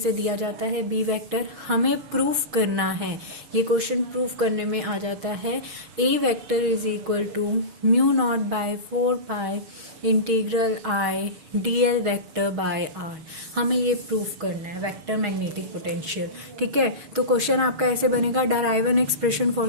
दिया जाता है. बी वेक्टर हमें प्रूफ करना है. ये क्वेश्चन प्रूफ करने में आ जाता है. A vector is equal to mu naught by 4 pi integral I D L vector by r. हमें ये प्रूफ करना है वेक्टर मैग्नेटिक पोटेंशियल. ठीक है, तो क्वेश्चन आपका ऐसे बनेगा, derive an expression for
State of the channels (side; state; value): left; late; 6.3 ms